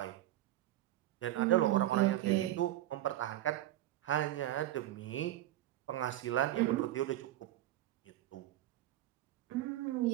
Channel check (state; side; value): quieter; left; 14.3 dB